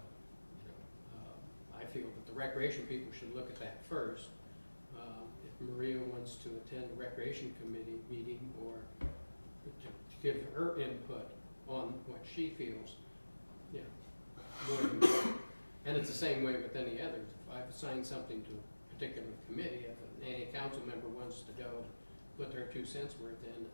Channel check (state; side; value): inverted; both; correlation -1.00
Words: I feel that the recreation people should look at that first. If Maria wants to attend the recreation committee meeting, or to give her input on what she feels, and it's the same way with any others. If I've assigned something to a particular committee, if any council member wants to go put their 2 cents worth in,